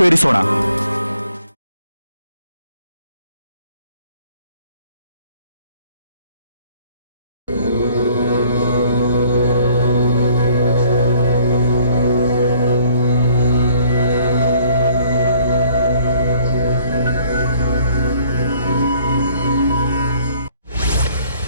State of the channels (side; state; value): both; inverted; correlation -0.59